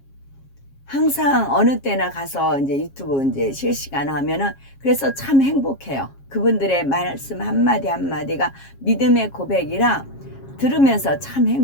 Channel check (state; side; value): late; right; 7.3 ms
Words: 항상 어느 때나 가서 이제 유튜브 이제 실시간 하면은 그래서 참 행복해요. 그분들의 말씀 한마디 한마디가 믿음의 고백이라 들으면서 참